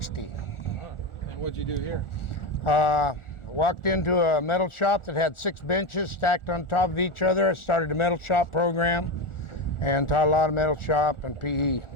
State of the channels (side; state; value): right; late; 1.4 ms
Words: And what'd you do here? Walked into a metal shop that had 6 benches stacked on top of each other. I started a metal shop program and taught a lot of metal shop and PE.